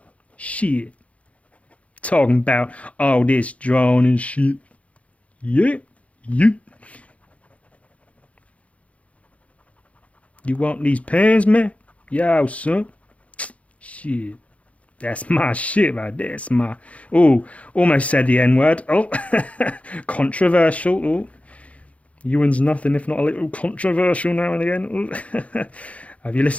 Shit. Talking about all this drawing and shit. Yeah. You want these pens, man? Yo, son. Shit. That's my shit right there. That's my... Oh, almost said the N-word. Oh, controversial. Oh. Ewan's nothing if not a little controversial now and again. Have you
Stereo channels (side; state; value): right; late; 0.065 ms